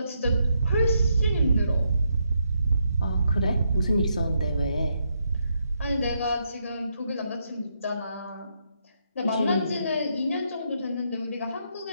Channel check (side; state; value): both; inverted; correlation -0.78